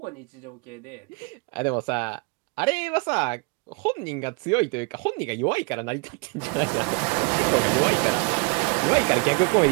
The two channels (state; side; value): quieter; left; 32.1 dB